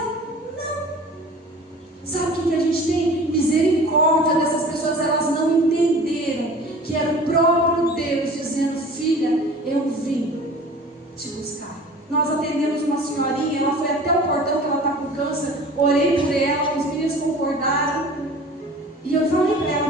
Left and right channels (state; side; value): normal; both; correlation 0.43